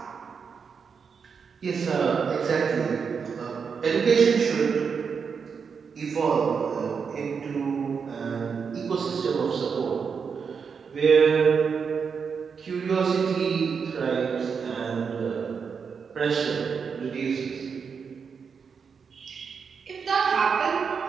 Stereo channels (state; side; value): quieter; left; 6.0 dB